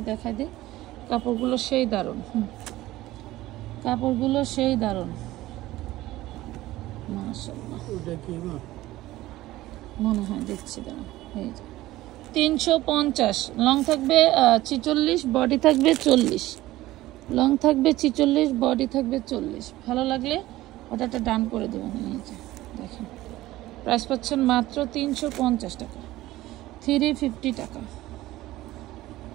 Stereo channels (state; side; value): quieter; left; 16.7 dB